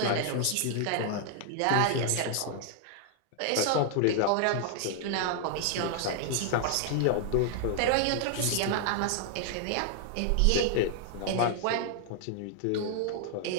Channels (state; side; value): different; both; correlation -0.01